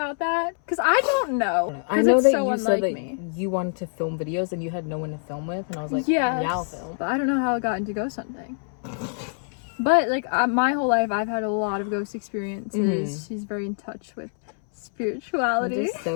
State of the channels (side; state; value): right; silent; 62 dB below the other